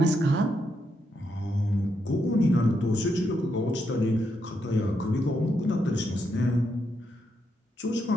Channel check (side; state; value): both; normal; correlation 0.80